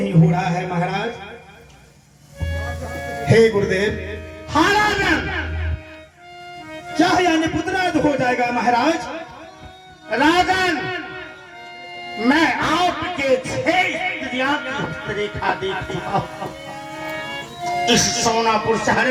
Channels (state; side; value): identical; both; correlation 1.00